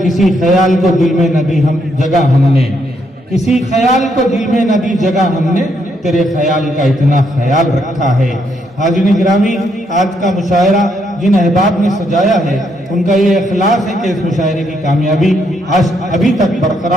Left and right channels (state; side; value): normal; both; correlation 0.75